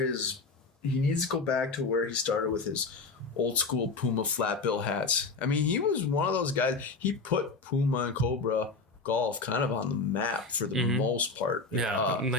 He needs to go back to where he started with his old school Puma flat bill hats. I mean, he was one of those guys. He put Puma and Cobra golf kind of on the map for the most part. Yeah,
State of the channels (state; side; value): quieter; right; 4.0 dB